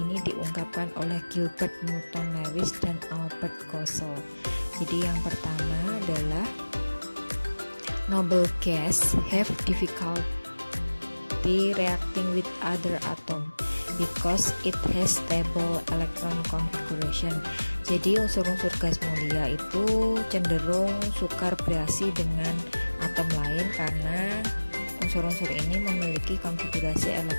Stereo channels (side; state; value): both; inverted; correlation -1.00